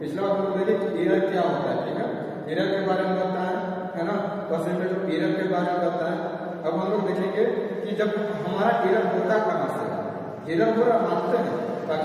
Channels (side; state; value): both; identical; correlation 1.00